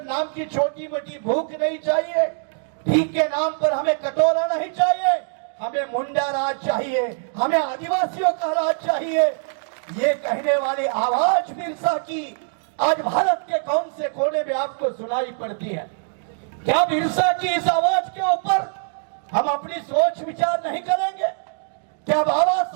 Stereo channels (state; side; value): silent; left; digital silence